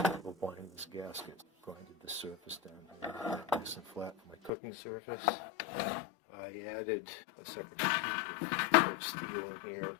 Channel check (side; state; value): right; drops out; at 4.5 s